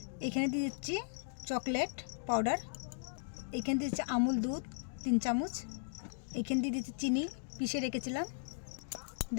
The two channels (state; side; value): silent; right; digital silence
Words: এখানে দিয়ে দিচ্ছি চকলেট পাউডার, এখানে দিয়ে দিচ্ছি আমুল দুধ 3 চামচ, এখানে দিয়ে দিচ্ছি চিনি পিষে রেখেছিলাম।